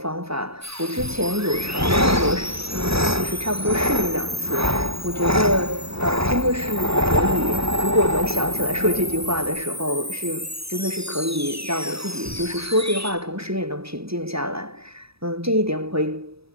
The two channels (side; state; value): left; late; 0.78 ms